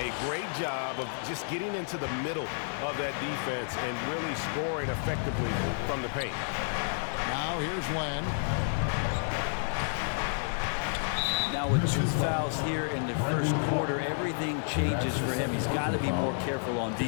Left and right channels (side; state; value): right; silent; digital silence